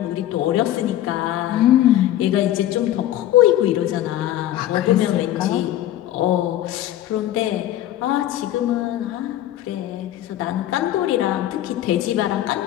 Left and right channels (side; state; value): right; quieter; 13.0 dB